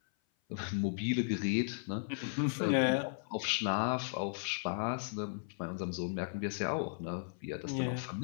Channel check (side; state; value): right; silent; 54 dB below the other